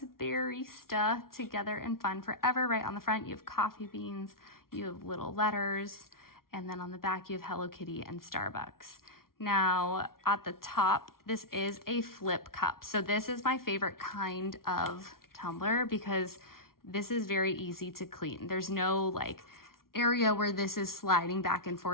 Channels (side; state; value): right; late; 0.93 ms